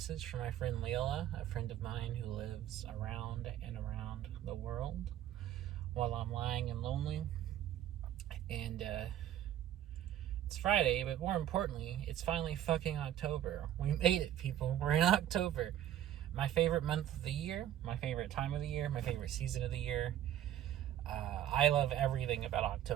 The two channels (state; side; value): quieter; left; 11.7 dB